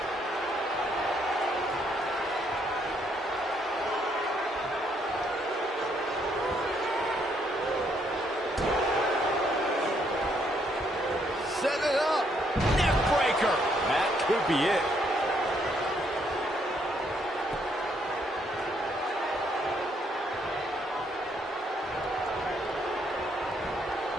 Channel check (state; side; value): normal; both; correlation 0.71